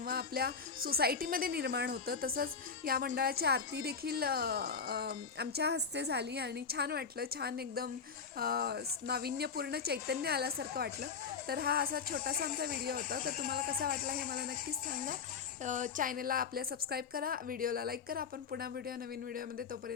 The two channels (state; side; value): quieter; right; 5.8 dB